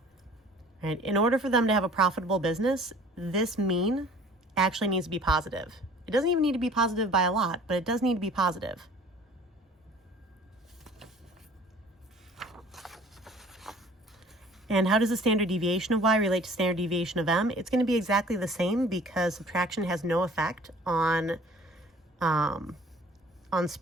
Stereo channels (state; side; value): normal; both; correlation 0.50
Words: Right? In order for them to have a profitable business, this mean actually needs to be positive. It doesn't even need to be positive by a lot, but it does need to be positive. And how does the standard deviation of y relate to standard deviation of m? It's going to be exactly the same, because subtraction has no effect on